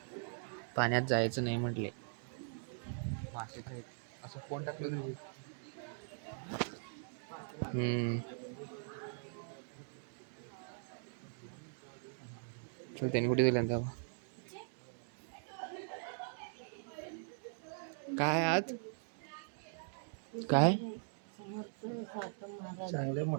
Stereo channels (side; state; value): left; silent; digital silence